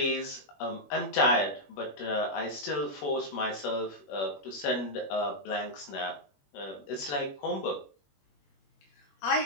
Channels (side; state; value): right; late; 21 ms